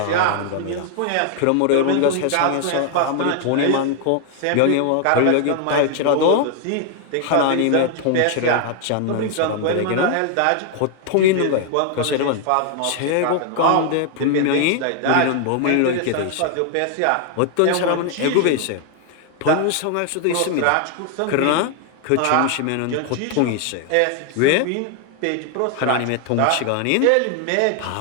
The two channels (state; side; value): different; both; correlation 0.00